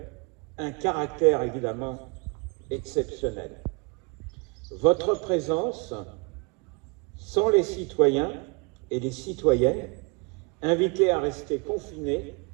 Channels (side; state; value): left; quieter; 31.2 dB